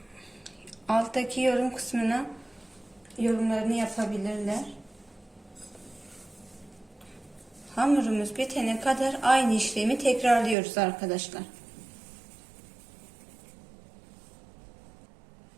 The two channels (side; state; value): left; drops out; at 10.6 s